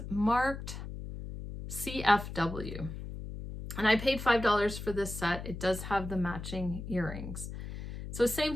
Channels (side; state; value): left; noise; hum, 9 dB below the sound